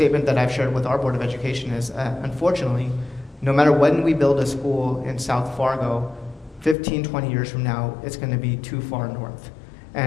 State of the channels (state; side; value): drops out; right; at 6.8 s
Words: that I've shared with our Board of Education is, unfortunately, no matter when we build a school in South Fargo, 15, 20 years from now, it's going to be too far north.